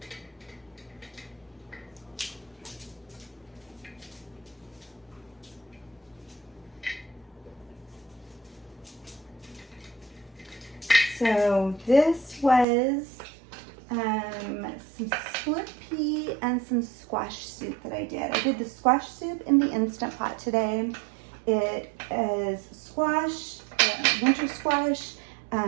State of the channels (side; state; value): left; drops out; at 12.7 s